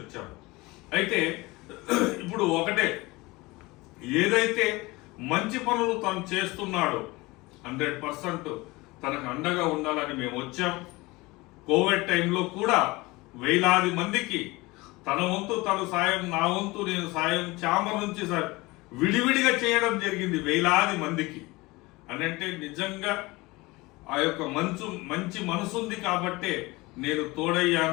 అయితే ఇప్పుడు ఒకటే, ఏదైతే మంచి పనులు తను చేస్తున్నాడో 100% తనకు అండగా ఉండాలని మేము వచ్చాం. కోవిడ్ టైంలో కూడా వేలాది మందికి తన వంతు తను సాయం, నా వంతు నేను సాయం ఛాంబర్ నుంచి విడివిడిగా చేయడం జరిగింది వేలాది మందికి. అని అంటే నిజంగా ఆ యొక్క మంచి మనసుంది కాబట్టే నేను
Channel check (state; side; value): quieter; right; 22.3 dB